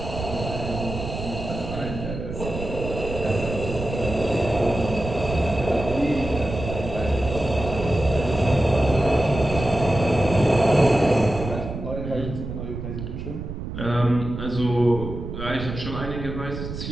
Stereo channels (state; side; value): noise; right; rumble, 7 dB below the sound